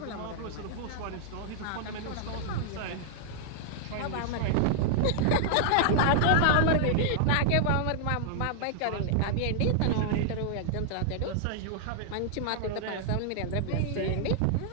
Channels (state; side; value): different; both; correlation 0.00